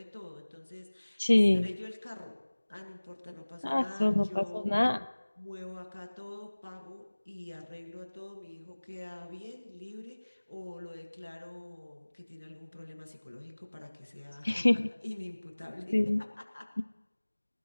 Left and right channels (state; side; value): inverted; both; correlation -1.00